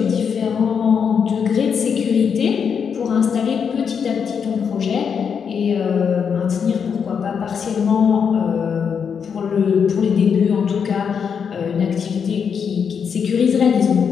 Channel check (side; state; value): right; quieter; 6.8 dB